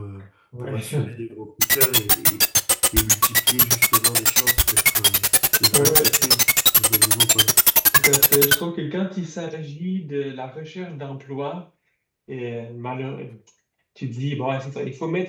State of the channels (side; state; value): both; identical; correlation 1.00